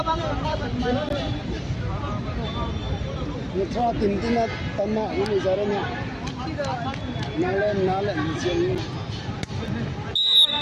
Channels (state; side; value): identical; both; correlation 1.00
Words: bang Nó cho tìm tin là tầm mạng của mình ra đây nha. Nó lên chuyện.